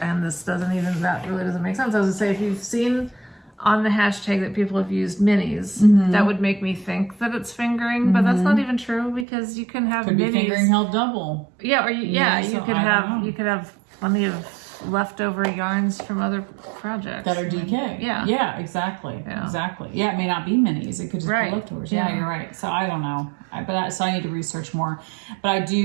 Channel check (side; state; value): left; drops out; at 9.2 s